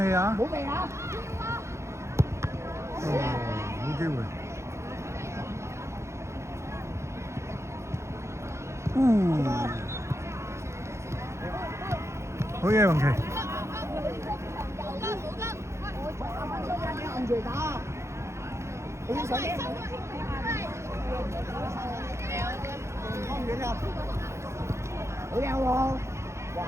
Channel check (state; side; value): late; left; 0.13 ms